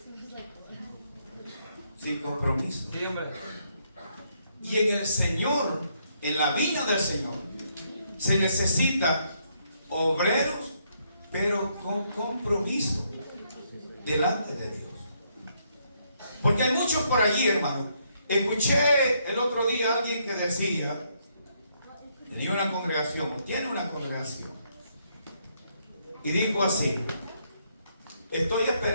sin compromiso. Sí, hombre. Y en el Señor, en la vida del Señor, se necesita obreros, pero con compromiso delante de Dios. Porque hay muchos por allí, hermano. Escuché el otro día a alguien que decía, tenía una congregación, tiene una congregación, y dijo así: estoy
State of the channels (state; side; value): inverted; both; correlation -0.73